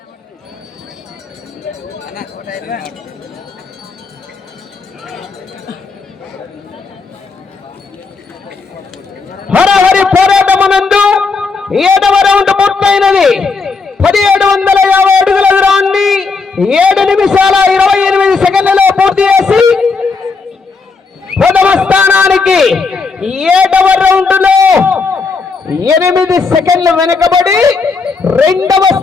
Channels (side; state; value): right; quieter; 4.4 dB